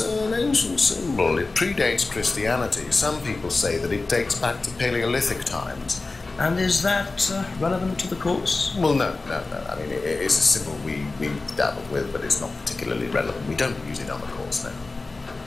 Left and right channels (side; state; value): right; quieter; 3.5 dB